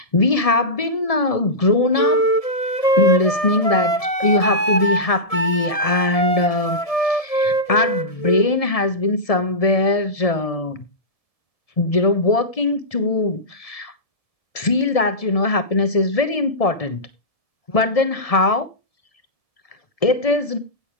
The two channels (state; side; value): late; right; 1.7 ms